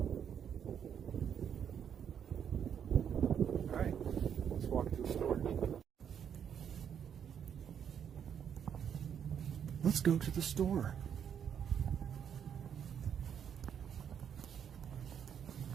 Alright, let's walk to the store. Let's go to the store.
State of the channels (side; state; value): left; quieter; 8.3 dB